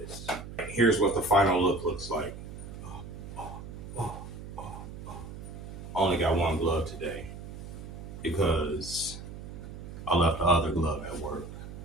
Here's what the final look looks like. I only got one glove today because I left the other glove at work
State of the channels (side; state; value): right; noise; hum, 11 dB below the sound